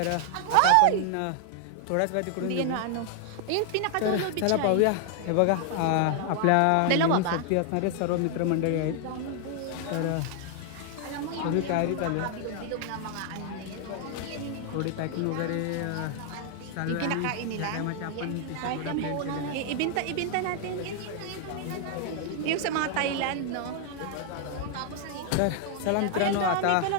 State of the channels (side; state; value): both; different; correlation 0.00